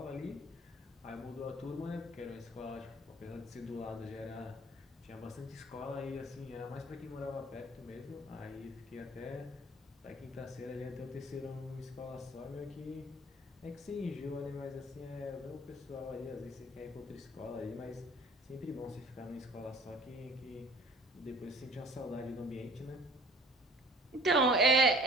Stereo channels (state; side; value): normal; both; correlation 0.50